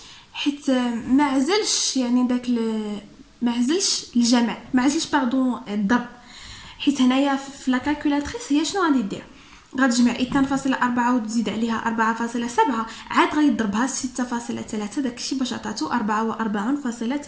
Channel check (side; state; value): both; identical; correlation 1.00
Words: حيت ما عزلش يعني داك ما عزلش الجمع، ما عزلش باردون الضرب. حيت هنايا في لا كالكولاتريس هي شنو غادي دير؟ غتجمع 2.4 وتزيد عليها 4.7 عاد غادي تضربها 6.3 داكشي باش عطاتو 44.73.